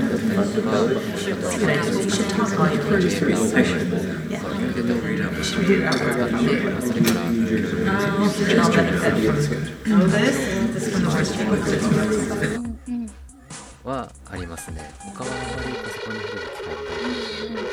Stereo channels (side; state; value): both; identical; correlation 1.00